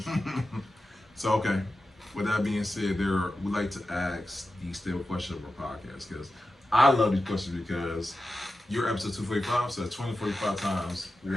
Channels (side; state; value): both; normal; correlation 0.92